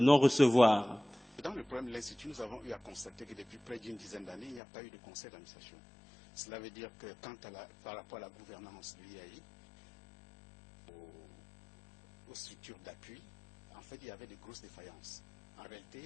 Dans le problème de l'Institut, nous avons eu à constater que depuis près d'une dizaine d'années, il n'y a pas eu de conseil d'administration. Cela veut dire que par rapport à la gouvernance de l'IAI, aux structures d'appui, en fait, il y avait de grosses défaillances. En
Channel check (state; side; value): drops out; right; at 4.6 s